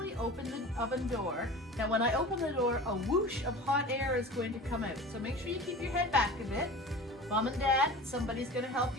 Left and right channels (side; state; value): both; normal; correlation 0.36